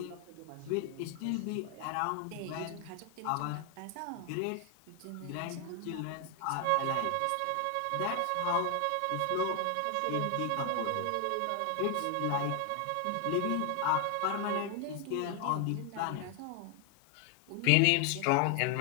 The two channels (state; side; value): different; both; correlation 0.01